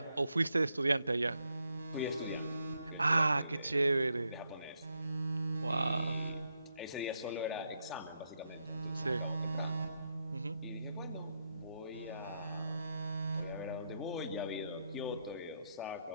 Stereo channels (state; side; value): inverted; both; correlation -0.80